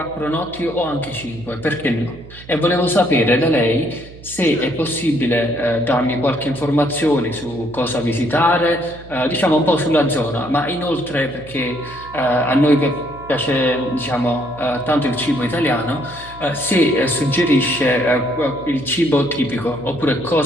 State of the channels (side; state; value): right; noise; hum, 18 dB below the sound